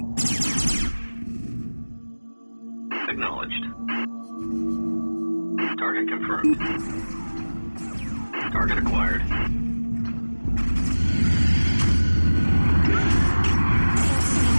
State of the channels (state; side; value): inverted; both; correlation -1.00